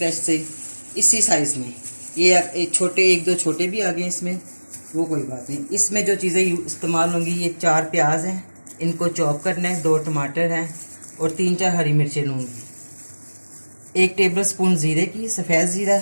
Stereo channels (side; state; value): both; inverted; correlation -1.00